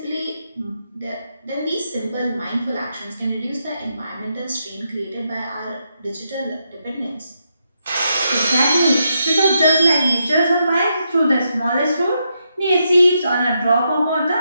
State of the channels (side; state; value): both; inverted; correlation -0.82